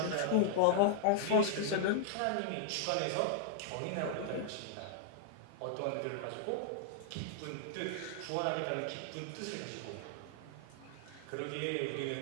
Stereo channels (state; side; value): different; both; correlation -0.01